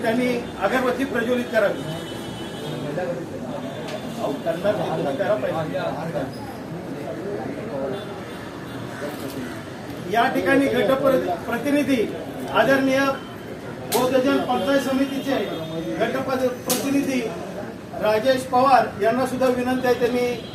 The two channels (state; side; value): identical; both; correlation 1.00